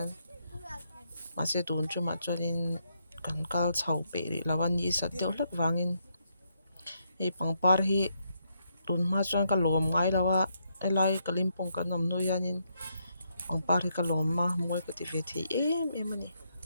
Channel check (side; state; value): both; inverted; correlation -0.78